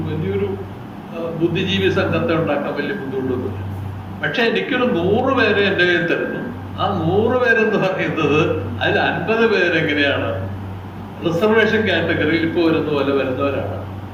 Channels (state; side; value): identical; both; correlation 1.00